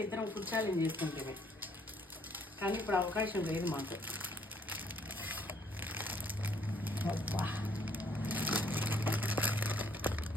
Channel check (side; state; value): both; normal; correlation 0.65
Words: ఇద్దరం కూర్చోాలని చేసుకుంటే, కానీ ఇప్పుడు అవకాశం లేదు మాకు.